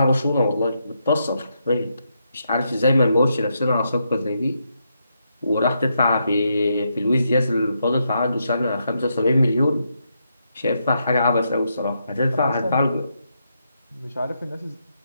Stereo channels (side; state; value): both; inverted; correlation -0.81